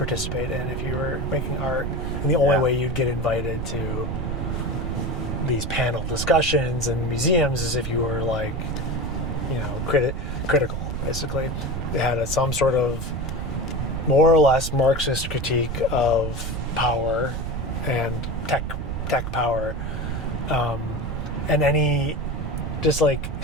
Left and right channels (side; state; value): right; noise; rumble, 5 dB below the sound